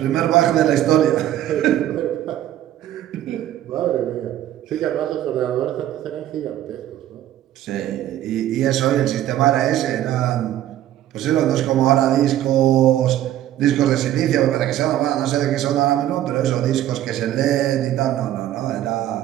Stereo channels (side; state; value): left; quieter; 12.7 dB